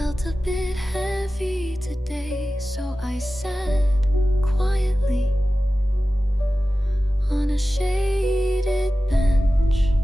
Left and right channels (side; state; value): both; normal; correlation 0.95